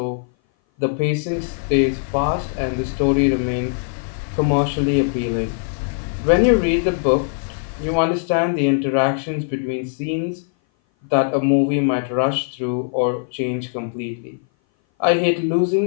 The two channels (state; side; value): silent; right; 58 dB below the other